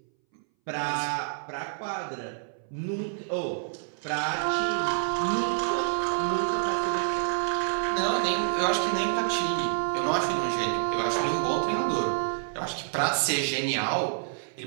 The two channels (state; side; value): silent; left; 59 dB below the other